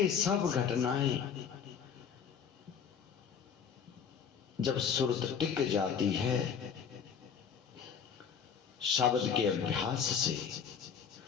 सब घटनाएं जब सुरत टिक जाती है शब्द के अभ्यास से,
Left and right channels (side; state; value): right; quieter; 7.2 dB